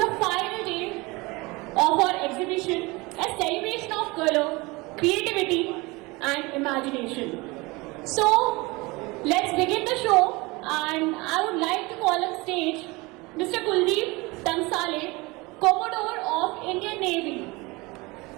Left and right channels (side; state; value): left; quieter; 24.1 dB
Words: final day of our exhibition, a celebration of color, creativity, and imagination. So, let's begin the show, and I would like to call on stage Mr. Kuldeep Tansale, Commodore of Indian Navy.